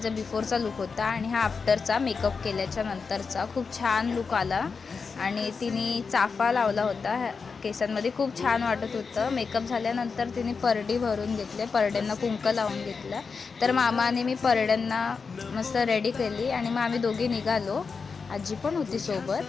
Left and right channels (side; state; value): right; quieter; 5.1 dB